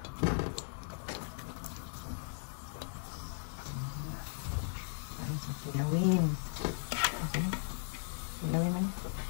Kilawin. Okay. Kilawin man.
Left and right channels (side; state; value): right; silent; digital silence